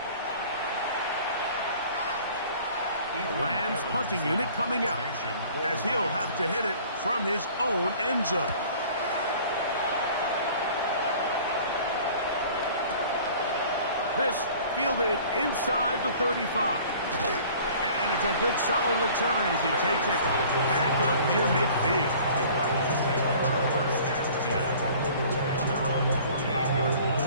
The Rams punting unit coming out as he'll have to hit it from his own end zone. This fielded inside the 35. And it's a good solid return as he takes it back up near midfield.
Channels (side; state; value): both; inverted; correlation -0.49